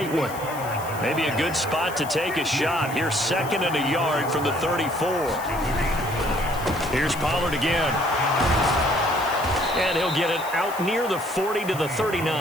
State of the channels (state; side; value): noise; left; hiss, 15 dB below the sound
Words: one. Maybe a good spot to take a shot. Here's 2nd and a yard from the 34. Here's Pollard again. And he'll get it out near the 40 to the